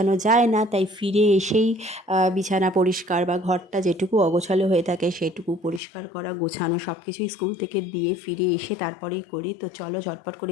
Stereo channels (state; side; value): drops out; right; at 5.8 s